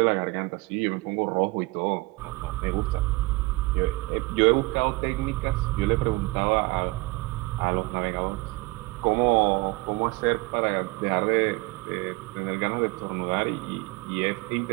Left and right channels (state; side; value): quieter; left; 23.5 dB